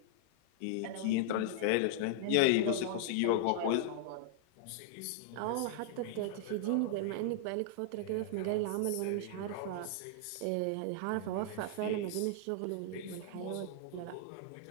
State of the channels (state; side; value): different; both; correlation -0.01